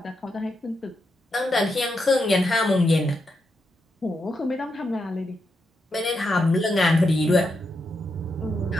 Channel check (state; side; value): normal; both; correlation 0.84